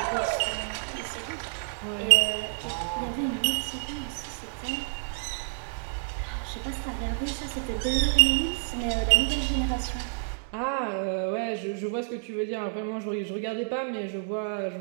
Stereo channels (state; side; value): silent; left; digital silence